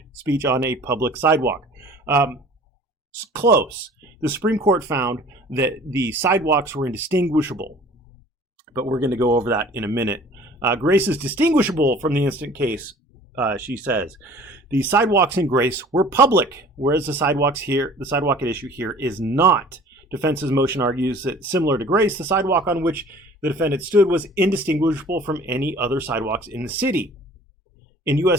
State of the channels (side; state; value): both; normal; correlation 0.48